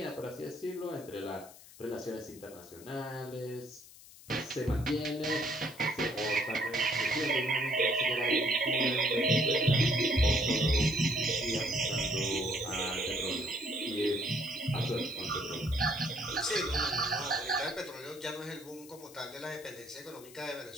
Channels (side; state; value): left; noise; hiss, 20 dB below the sound